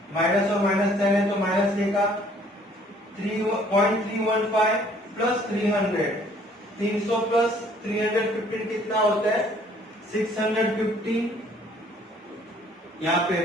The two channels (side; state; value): both; normal; correlation 0.59